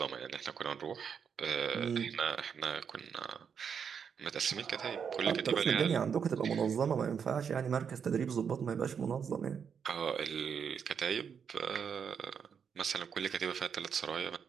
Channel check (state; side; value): quieter; left; 7.0 dB